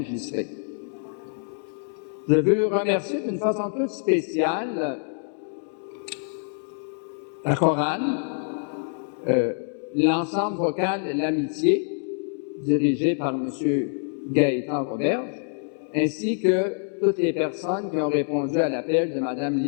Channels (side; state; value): right; silent; digital silence